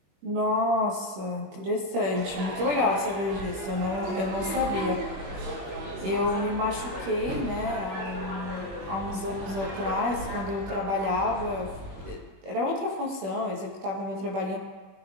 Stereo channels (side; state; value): left; late; 21 ms